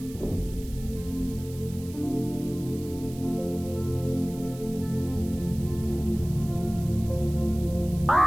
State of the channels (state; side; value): noise; right; hiss, 19 dB below the sound